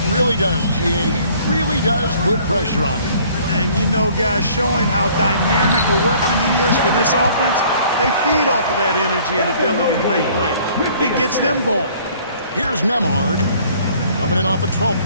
really does, GA. He really does put pressure on him. And you know, guys, showing how dynamic a weapon he is for this offense, they feed off of that energy and ability to make plays. It gets them going. Here's Nembhard. Coming in off a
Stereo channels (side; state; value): both; inverted; correlation -0.56